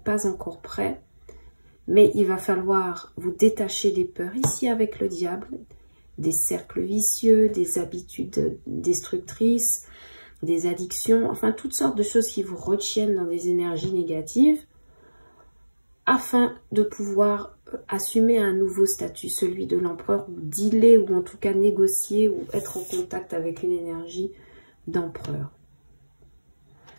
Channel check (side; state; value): both; inverted; correlation -1.00